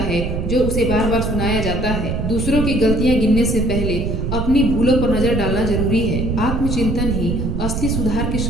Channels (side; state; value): right; noise; rumble, 2 dB below the sound